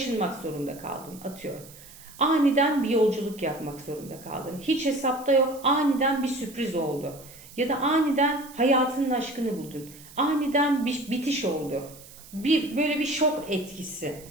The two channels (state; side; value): noise; right; hiss, 20 dB below the sound